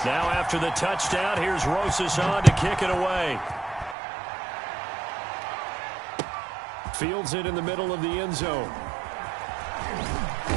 Now after the touchdown, here's Rosas on to kick it away. Fields it in the middle of the end zone.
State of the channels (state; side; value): drops out; left; at 4.0 s